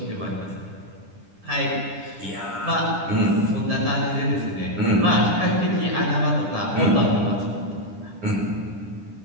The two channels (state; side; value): late; left; 10 ms